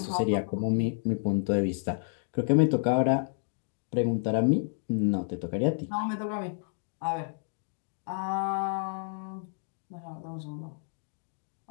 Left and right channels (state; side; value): silent; right; digital silence